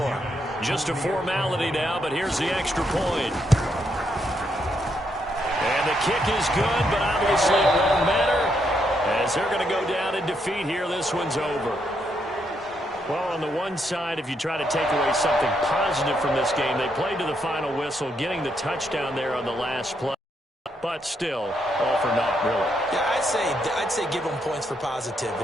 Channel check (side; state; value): both; normal; correlation 0.77